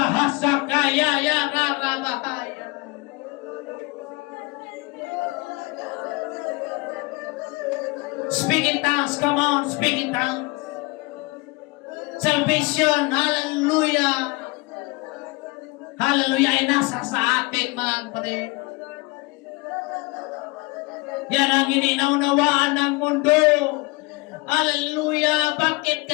Ya Rabahaya. Speak in tongues, come on, speak in tongues. Salvation, hallelujah. Hallelujah, ay nasa sa atin, mga kapatid. Yan ang ininaunnawaan ng mundo. Hallelujah, bakit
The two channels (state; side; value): quieter; right; 25.7 dB